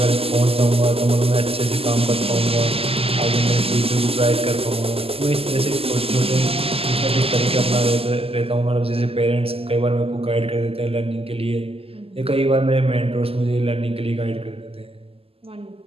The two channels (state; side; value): late; left; 0.28 ms